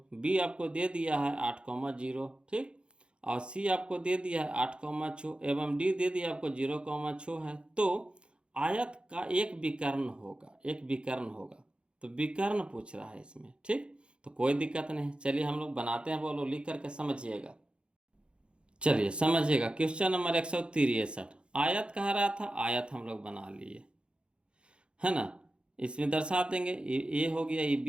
बी आपको दे दिया है 8,0, ठीक, और सी आपको दे दिया है 8,6 एवं डी दे दिया आपको 0,6 है। तो आयत का एक विकर्ण होगा, एक विकर्ण होगा। तो विकर्ण पूछ रहा है इसमें, ठीक। तो कोई दिक्कत नहीं, चलिए हम लोग बनाते हैं, बोलो लिख करके समझिएगा। चलिए समझिएगा, क्वेश्चन नंबर 163, आयत कह रहा था, आयत हम लोग बना लिए, है ना। इसमें दर्शा देंगे, ए हो गया, ये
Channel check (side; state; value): left; late; 0.055 ms